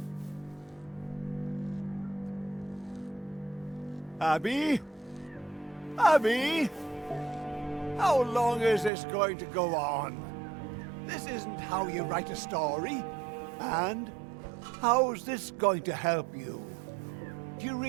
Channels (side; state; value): left; drops out; at 8.9 s